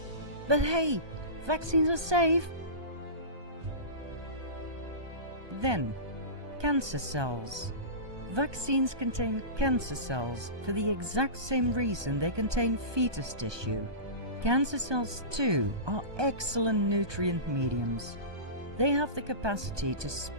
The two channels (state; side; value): late; left; 1.2 ms